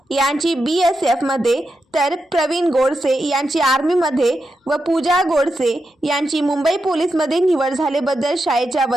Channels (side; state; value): both; normal; correlation 0.87